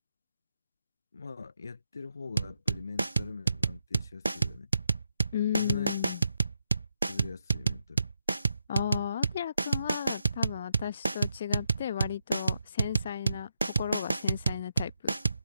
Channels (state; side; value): inverted; both; correlation -0.82